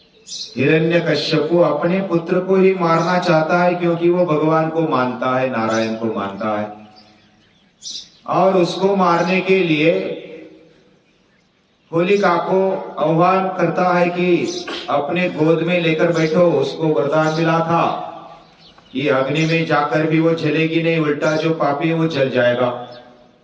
हिरण्यकश्यपु अपने पुत्र को ही मारना चाहता है, क्योंकि वो भगवान को मानता है, नारायण को मानता है, और उसको मारने के लिए होलिका को आह्वान करता है कि अपने गोद में लेकर बैठो। उसको वरदान मिला था कि अग्नि में जाकर भी वो जलेगी नहीं, उल्टा जो पापी है वो जल जाएगा,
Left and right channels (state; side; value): identical; both; correlation 1.00